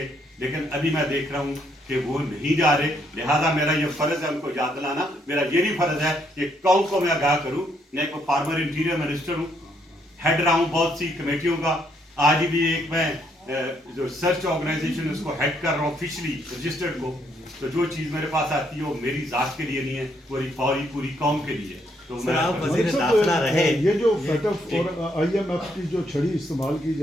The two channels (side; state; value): both; normal; correlation 0.72